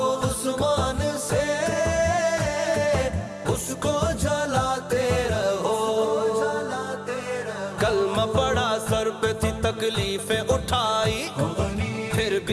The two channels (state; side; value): identical; both; correlation 1.00